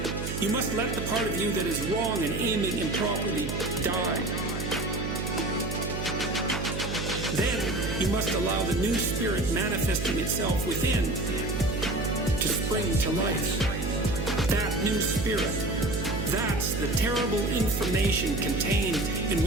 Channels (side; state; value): right; noise; hum, 4 dB below the sound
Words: you must let the part of you that is wrong and aiming improperly die. Then you must allow the new spirit manifesting itself within to spring to life. That new spirit, that's the terrible information contained in